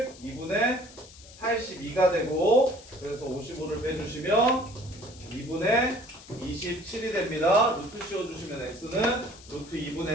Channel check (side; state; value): left; noise; hiss, 20 dB below the sound